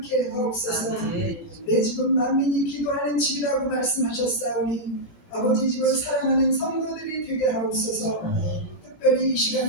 하옵소서. 내 집은 만민이 기도하는 집이라고 말씀하셨사오니 아버지 집을 사랑하는 성도들이 되게 하옵소서. 특별히 이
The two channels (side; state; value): right; late; 17 ms